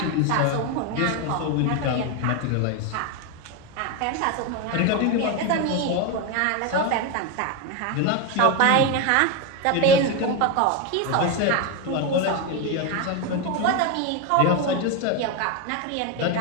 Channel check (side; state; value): both; different; correlation 0.02